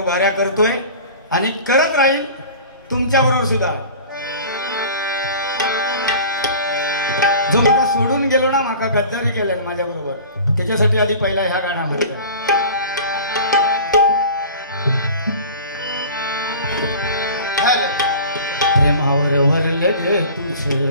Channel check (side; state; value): both; inverted; correlation -0.40